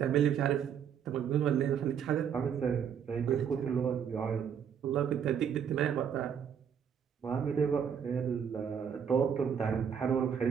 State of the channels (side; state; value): left; quieter; 7.9 dB